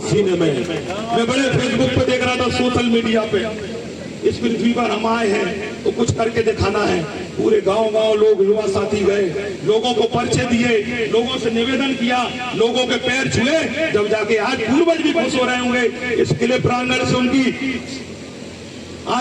सीने में। मैं बड़े फेसबुक पे देख रहा था, सोशल मीडिया पे, इस पृथ्वी पर हम आए हैं तो कुछ करके दिखाना है। पूरे गांव लोग, युवा साथी गए, लोगों को परिचय दिए, लोगों से निवेदन किया, लोगों के पैर छुए, जब जाके आज पूर्वज भी खुश हो रहे होंगे इस किले प्रांगण से, उनकी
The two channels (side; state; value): both; identical; correlation 1.00